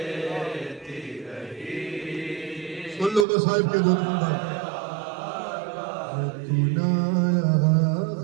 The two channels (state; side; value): drops out; left; at 3.2 s